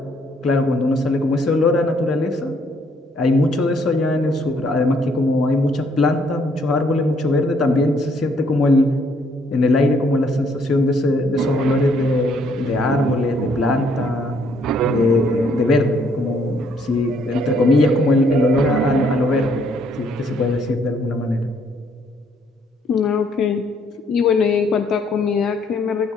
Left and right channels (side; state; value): both; normal; correlation 0.67